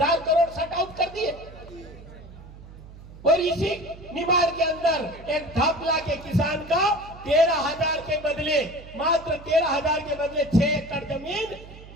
करोड़ शट आउट कर दिए, और इसी निमाड़ के अंदर एक धापला के किसान का 13,000 के बदले, मात्र 13,000 के बदले 6 एकड़ जमीन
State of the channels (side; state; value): right; noise; hum, 17 dB below the sound